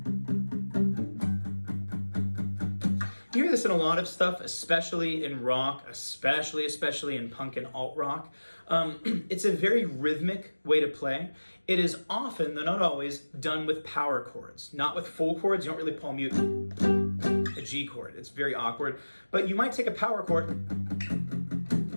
You hear this in a lot of stuff, especially in rock, especially in punk and alt rock. It's a very rhythmic way to play. It is often, though not always, done with power chords, not with full chords. You don't really palm mute a G chord. It's very awkward. But you might take a power chord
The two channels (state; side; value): inverted; both; correlation -1.00